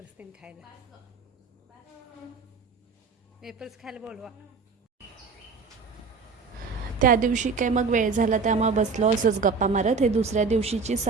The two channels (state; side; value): quieter; left; 4.8 dB